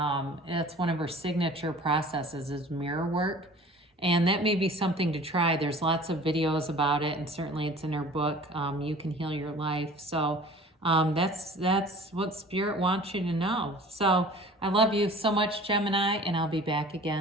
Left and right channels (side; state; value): both; normal; correlation 0.45